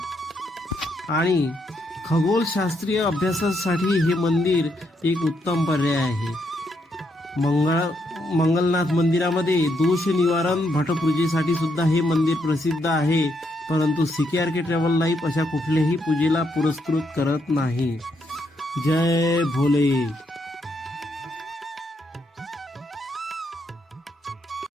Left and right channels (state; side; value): normal; both; correlation 0.77